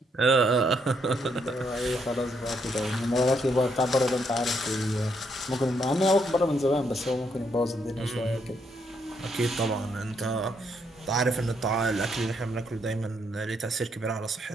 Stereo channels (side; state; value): both; normal; correlation 0.75